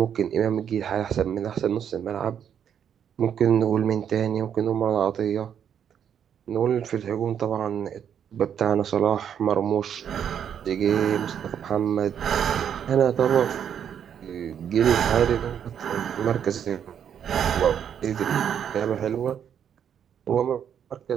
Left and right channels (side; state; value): left; quieter; 8.6 dB